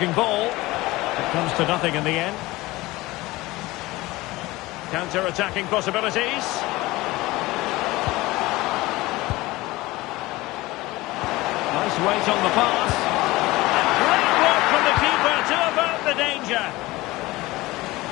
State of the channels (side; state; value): right; quieter; 19.8 dB